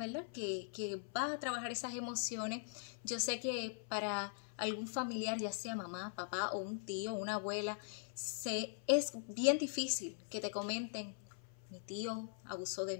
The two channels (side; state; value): right; silent; 50 dB below the other